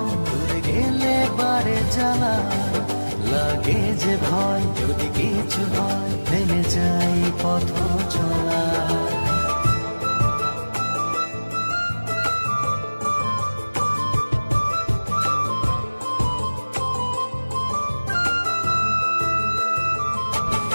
দূরে গেলে বারে জ্বালা লাগে যে ভয়, যদি কিছু হয় থেমে যাই পথ চলা।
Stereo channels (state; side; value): inverted; both; correlation -1.00